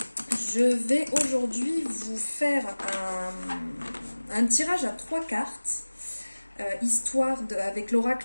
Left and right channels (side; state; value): both; inverted; correlation -1.00